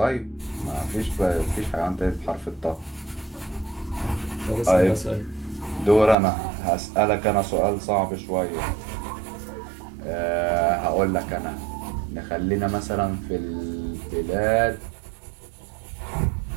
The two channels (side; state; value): left; drops out; at 6.2 s